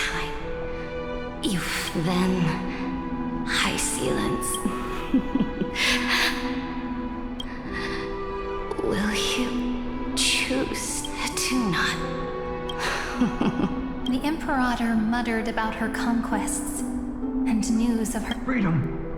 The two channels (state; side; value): identical; both; correlation 1.00